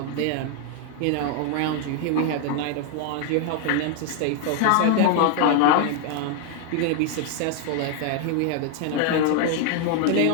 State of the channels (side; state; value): both; different; correlation 0.00